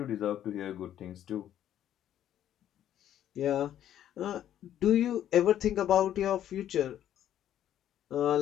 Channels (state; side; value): quieter; right; 11.2 dB